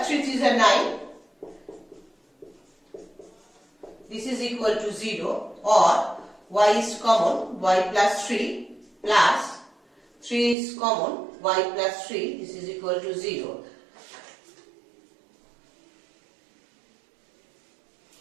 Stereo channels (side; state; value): left; drops out; at 10.6 s